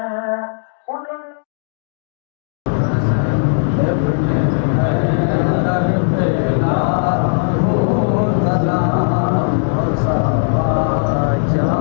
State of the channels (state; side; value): silent; right; digital silence